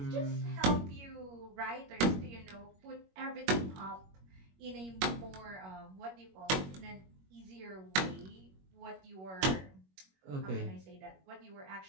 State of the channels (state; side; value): late; left; 21 ms